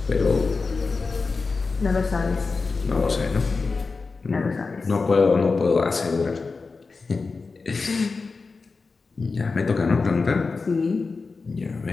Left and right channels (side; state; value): right; quieter; 4.3 dB